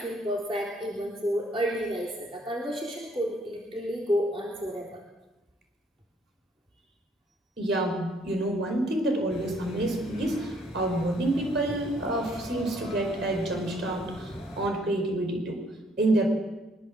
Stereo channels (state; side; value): normal; both; correlation 0.65